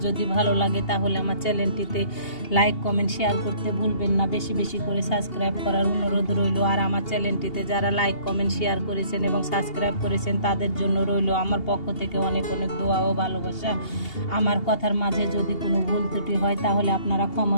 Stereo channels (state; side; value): late; right; 2.8 ms